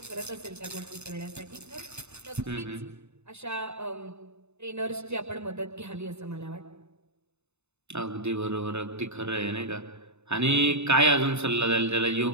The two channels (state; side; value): late; left; 0.81 ms